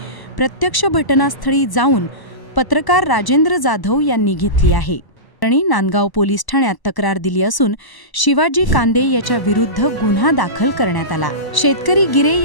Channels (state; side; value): late; right; 1.0 ms